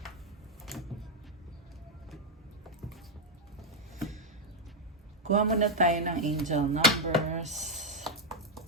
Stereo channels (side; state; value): both; normal; correlation 0.02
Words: Kuha muna tayo ng angel numbers.